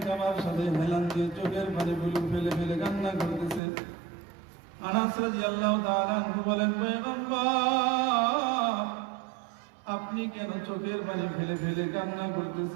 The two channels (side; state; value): left; drops out; at 3.6 s